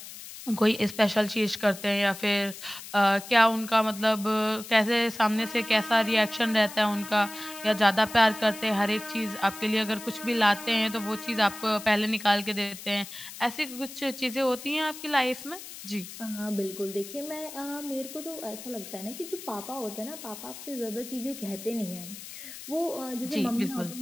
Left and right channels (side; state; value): left; noise; hiss, 13 dB below the sound